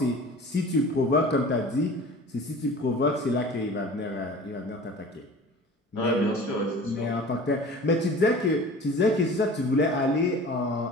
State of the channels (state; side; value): normal; both; correlation 0.41